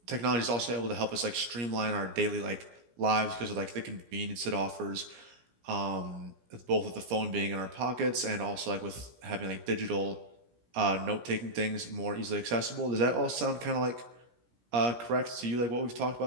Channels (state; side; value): late; left; 17 ms